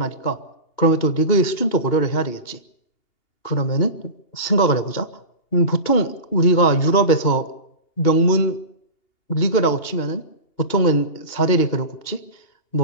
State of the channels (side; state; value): right; late; 2.8 ms